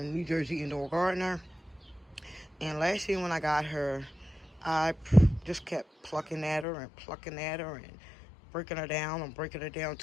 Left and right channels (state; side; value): drops out; right; at 6.7 s